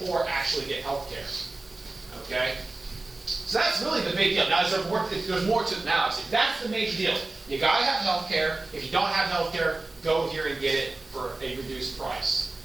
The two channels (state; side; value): quieter; left; 3.2 dB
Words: actually get health care. Okay? So that's really the big deal. Now, there's more to it now. That's the major deal. You gotta have health care. If you don't have health care, go here and get it for a reduced price.